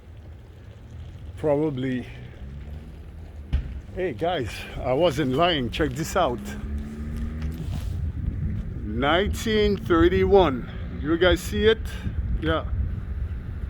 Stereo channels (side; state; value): both; identical; correlation 1.00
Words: probably. Hey guys, I wasn't lying. Check this out. 1931. You guys see it? Yeah.